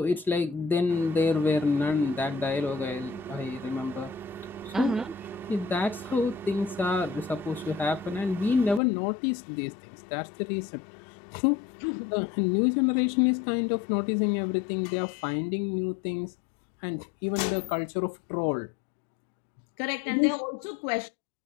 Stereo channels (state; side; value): drops out; right; at 8.8 s